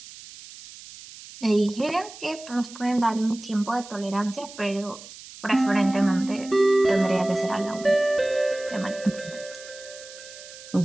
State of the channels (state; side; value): noise; right; hiss, 17 dB below the sound